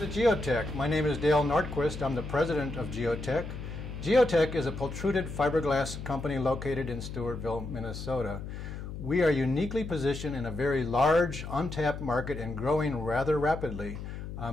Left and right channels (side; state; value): left; noise; hum, 8 dB below the sound